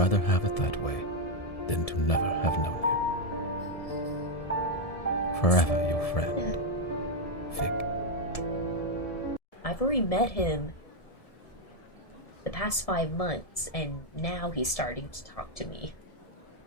have it that way than to never have known you. Forever your friend, Fig. I've already met him the past 5 months, and now he's starting to talk to me.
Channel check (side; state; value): right; late; 1.7 ms